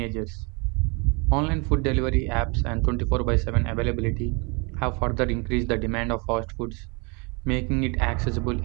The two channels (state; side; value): quieter; left; 31.0 dB